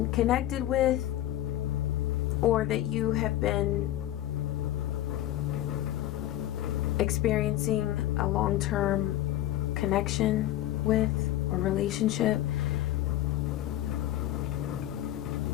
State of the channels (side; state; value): right; quieter; 13.7 dB